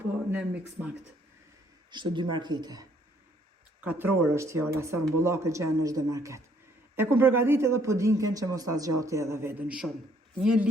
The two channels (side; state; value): both; normal; correlation 0.65